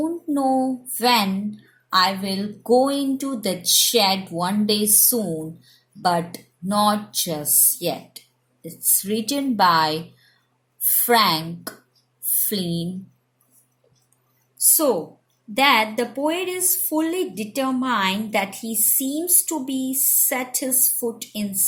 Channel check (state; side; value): identical; both; correlation 1.00